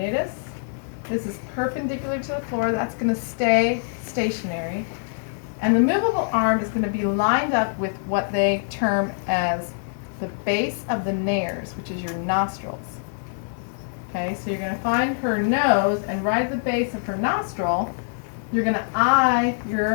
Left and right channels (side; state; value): right; silent; digital silence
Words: This is perpendicular to the floor. That's going to stay stationary. And the movable arm is going to be lined up with what they term as the base of the nares, which is your nostrils. Okay, so you're going to find her nose, and right at the base of her nostril, you're going to eye